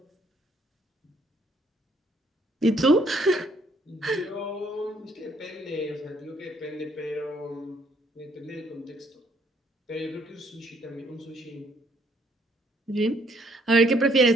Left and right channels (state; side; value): normal; both; correlation 0.67